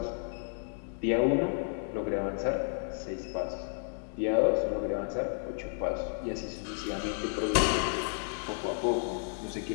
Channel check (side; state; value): right; silent; 56 dB below the other